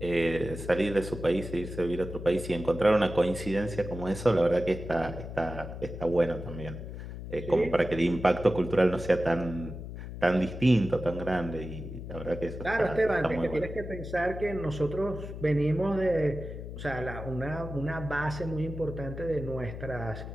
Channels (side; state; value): left; noise; hum, 9 dB below the sound